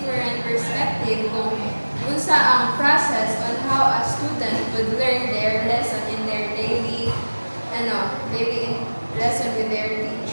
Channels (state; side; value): inverted; both; correlation -1.00